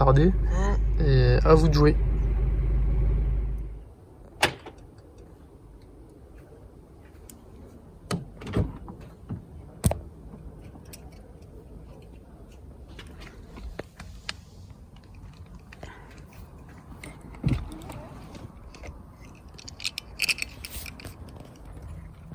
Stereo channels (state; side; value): identical; both; correlation 1.00